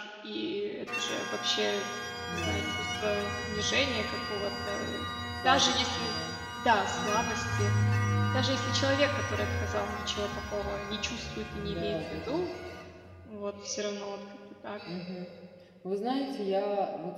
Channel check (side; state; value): both; identical; correlation 1.00